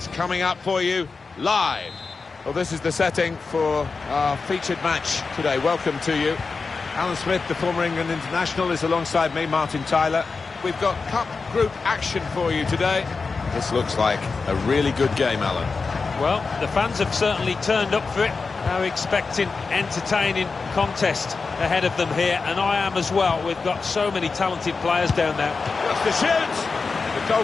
coming up for you live. Well, this is the setting for our featured match today. Welcome to you. Alan Smith, the former England international, is alongside me, Martin Tyler. We've got Cup Group action for you today. This looks like a really good game, Alan. Well, the fans have certainly turned up for it. They're expecting entertaining contest ahead of them here, and I am as well. We've got so many talented players down there. What's the shoot? The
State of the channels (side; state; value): right; quieter; 4.5 dB